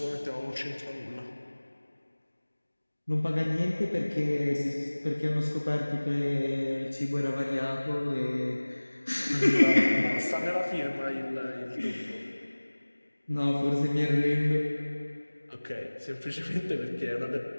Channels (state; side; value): inverted; both; correlation -1.00